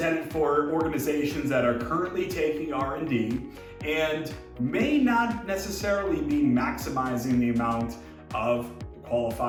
for organizations that are currently taking R&D and may not necessarily be maximizing the amount of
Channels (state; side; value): identical; both; correlation 1.00